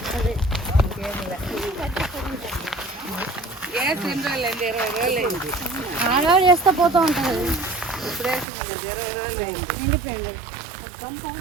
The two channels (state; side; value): drops out; left; at 8.5 s